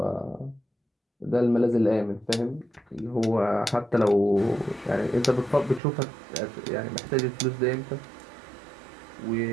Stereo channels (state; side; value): drops out; left; at 5.8 s